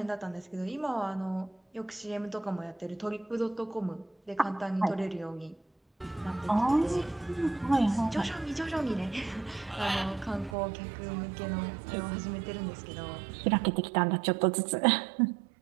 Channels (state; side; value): drops out; left; at 10.6 s